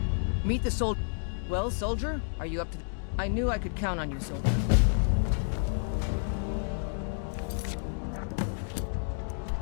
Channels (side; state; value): right; silent; digital silence